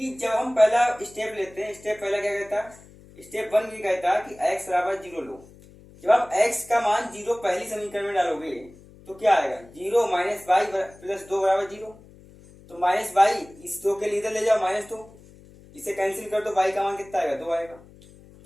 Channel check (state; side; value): noise; left; hum, 23 dB below the sound